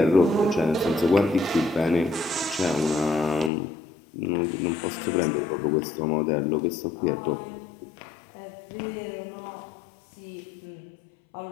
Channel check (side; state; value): right; drops out; at 3.5 s